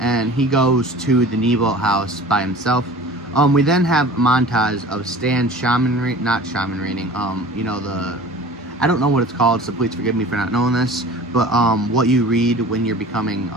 and he goes to the Nebo house by himself. We then have a montage of Stan not shaman reading, I don't know what it's called, so please forgive me for not knowing this, but what you read when you're becoming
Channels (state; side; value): normal; both; correlation 0.42